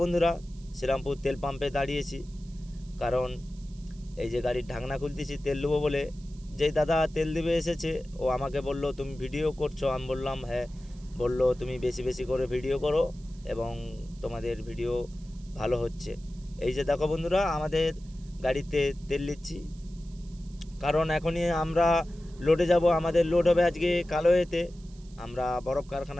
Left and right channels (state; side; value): noise; right; hiss, 27 dB below the sound